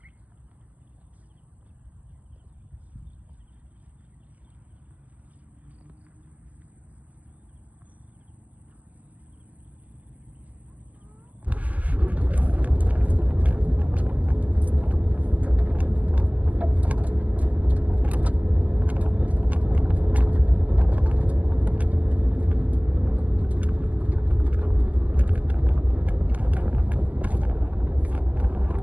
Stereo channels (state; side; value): late; left; 0.077 ms